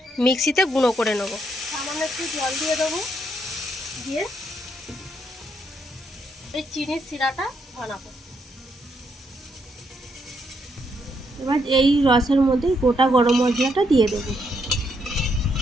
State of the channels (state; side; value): normal; both; correlation 0.76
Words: মিক্সিতে গুঁড়ো করে নেব। সামান্য একটু জল দিয়ে দেবো, দিয়ে এই চিনির শিরাটা বানাবো। এবার এই রসের মধ্যে গোটা গরম মশলাটা দিয়ে দেবো।